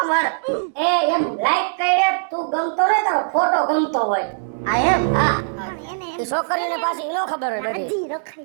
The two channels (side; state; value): left; silent; digital silence